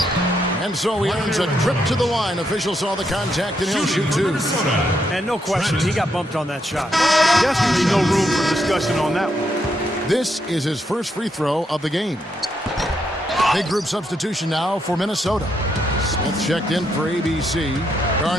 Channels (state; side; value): normal; both; correlation 0.78